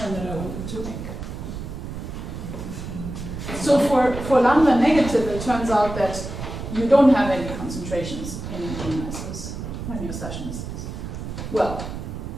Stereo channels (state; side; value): noise; right; rumble, 7 dB below the sound